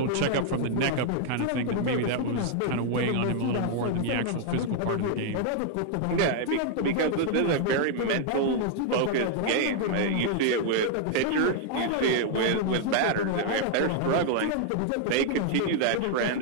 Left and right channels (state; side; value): different; both; correlation -0.01